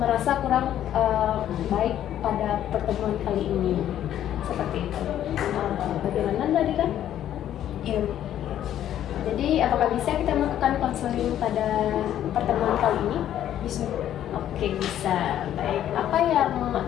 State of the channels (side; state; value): right; quieter; 11.3 dB